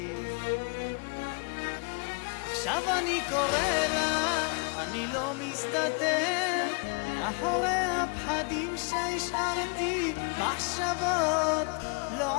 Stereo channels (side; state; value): right; quieter; 34.9 dB